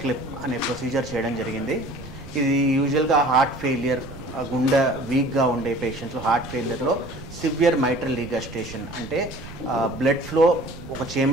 క్లిప్ అనే ప్రొసీజర్ చేయడం జరిగింది. ఇది యూజువల్గా హార్ట్ ఫెయిలియర్, గుండె వీక్గా ఉండే పేషెంట్స్లో హార్ట్ ఫెయిలియర్లో సివియర్ మైట్రల్ రీగస్టేషన్ అంటే బ్లడ్ ఫ్లో ఒక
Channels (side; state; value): right; noise; rumble, 15 dB below the sound